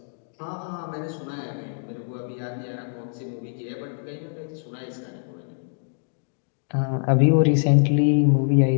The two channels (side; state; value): right; silent; digital silence